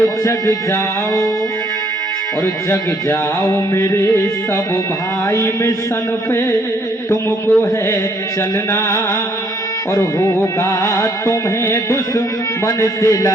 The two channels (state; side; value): normal; both; correlation 0.67